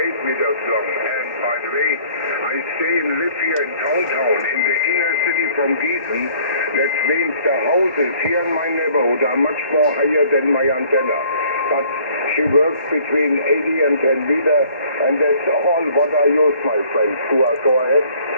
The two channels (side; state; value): both; inverted; correlation -0.56